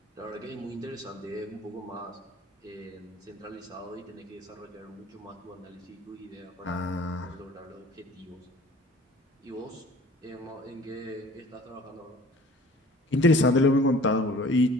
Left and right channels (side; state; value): both; normal; correlation 0.48